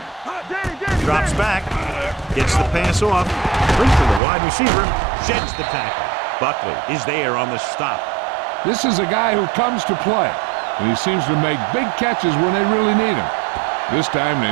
Danny. Drops back, gets the pass off, brings to the wide receiver, sheds the tackle. Buckley is there on the stop. This is a guy who comes to play, and he seems to make big catches when they really need him. This time they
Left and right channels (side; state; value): left; drops out; at 4.2 s